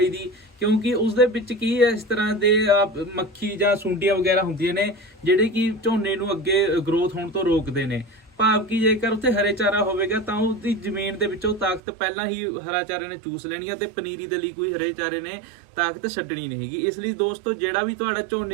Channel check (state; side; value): drops out; left; at 11.8 s